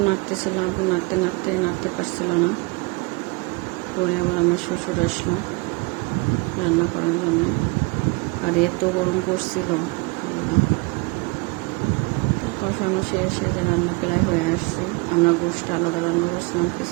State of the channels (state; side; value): quieter; left; 28.2 dB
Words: নাড়তেছিল, আপু নাড়তে পারছিল না। পরে আবার আমার শ্বশুর আসলো রান্না করার জন্যে। আর এত গরম পড়ছিল, আল্লাহ। তো কষানো শেষে যে রান্না প্রায় হয়ে আসছে। আমরা গোশটা আলাদা রান্না করছিলাম,